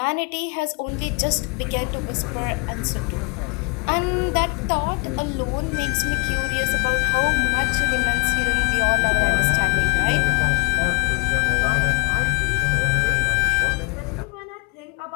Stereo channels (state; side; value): quieter; right; 32.0 dB